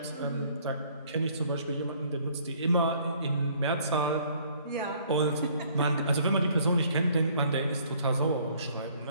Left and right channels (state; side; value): inverted; both; correlation -0.60